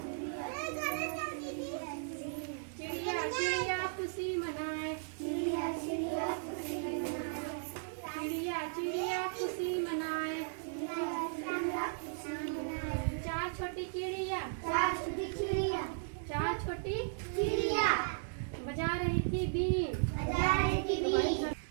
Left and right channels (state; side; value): silent; left; digital silence